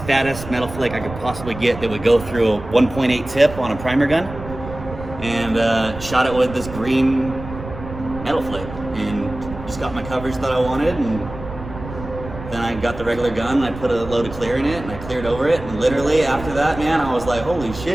fattest metal flake I could possibly get that would go through a 1.8 tip on a primer gun, and shot it with this green metal flake, and just got my coverage that I wanted, and then I got the regular gun and I put a load of clear in it and I cleared over it, and literally after that, man, I was like, holy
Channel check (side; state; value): right; noise; rumble, 12 dB below the sound